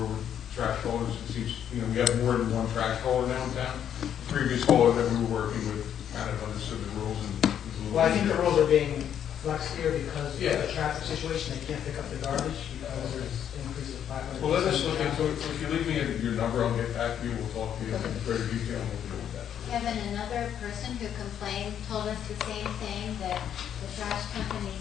with trash haulers. It seems, we have more than one trash hauler now in town. The previous hauler that we were working with kind of understood the rules and was a little. Well, I think the rules are being flexed here because Yeah. of the traffic situation. They can't pick up the garbage because there's increase of 500. Well, let us look into it. If you leave me your number, I'll get back to you. We'll talk to you in greater detail and we'll deal with that. Kevin, another person who complained told us the same thing, that the trash company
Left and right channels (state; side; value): quieter; right; 9.4 dB